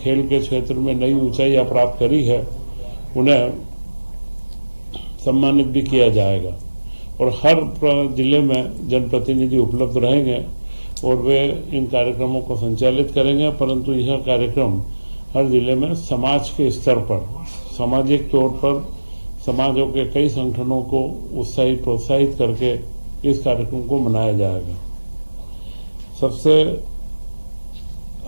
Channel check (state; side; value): inverted; both; correlation -1.00